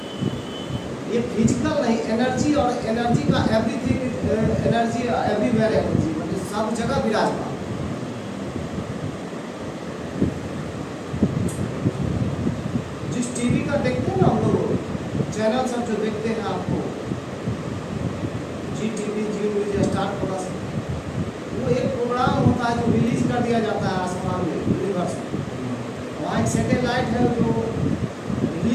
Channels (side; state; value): both; identical; correlation 1.00